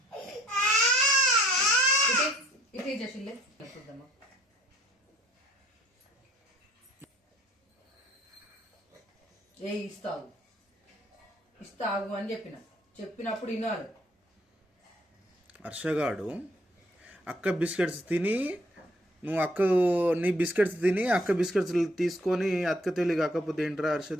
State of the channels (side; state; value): both; normal; correlation 0.61